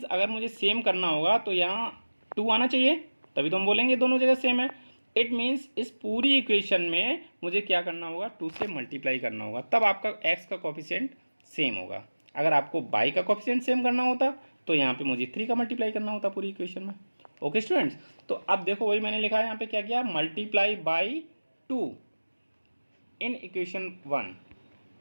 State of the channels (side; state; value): both; inverted; correlation -1.00